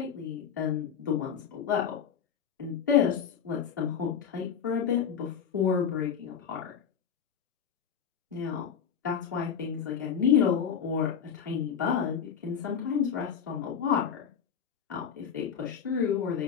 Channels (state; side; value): quieter; right; 7.6 dB